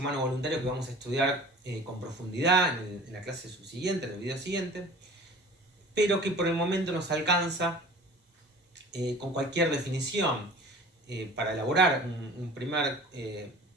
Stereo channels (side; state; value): both; normal; correlation 0.43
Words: vamos a estudiar con profundidad en la clase subsiguiente, en el video siguiente, pero que por el momento nos alcanza con cualquier definición para elaborar un primer